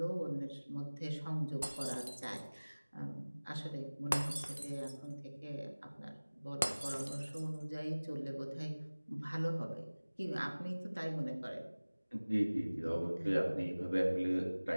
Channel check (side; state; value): both; inverted; correlation -1.00